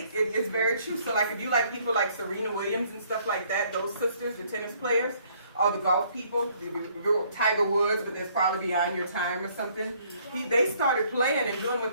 It's very true. So like if you like people like Serena Williams and stuff like that, those sisters, the tennis players, or the golf people, Tiger Woods, but that's probably beyond your time or something. They started playing and doing what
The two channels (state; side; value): inverted; both; correlation -0.63